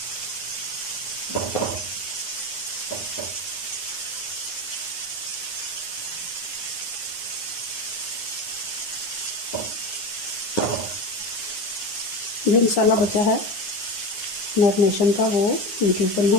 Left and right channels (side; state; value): right; late; 9.6 ms